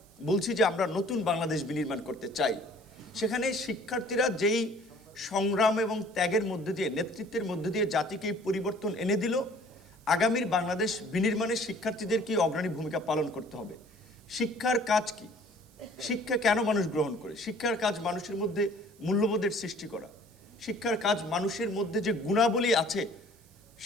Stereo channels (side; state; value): right; noise; hiss, 29 dB below the sound